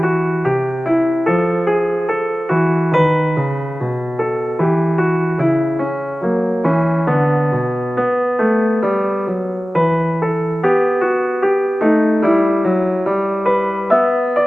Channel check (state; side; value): normal; both; correlation 0.96